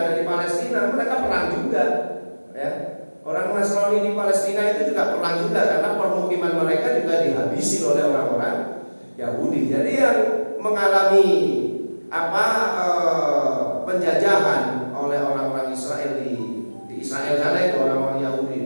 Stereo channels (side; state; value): both; inverted; correlation -1.00